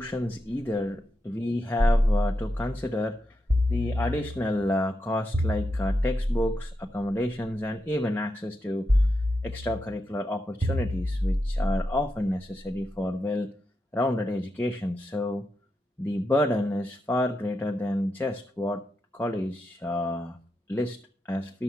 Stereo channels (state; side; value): normal; both; correlation 0.86